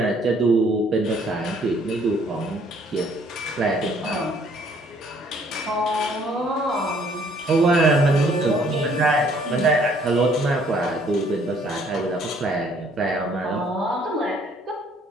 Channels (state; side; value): normal; both; correlation 0.62